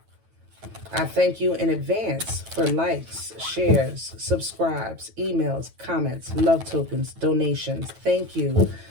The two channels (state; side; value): late; left; 9.1 ms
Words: I thank you in advance for likes, shares, subscribes, emails, comments, love tokens, donations. Thank you,